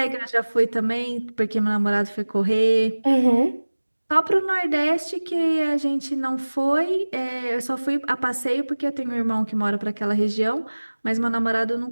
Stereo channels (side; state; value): both; inverted; correlation -1.00